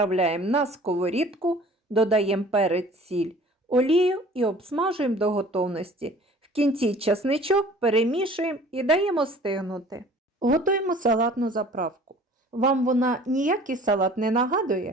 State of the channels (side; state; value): both; normal; correlation 0.48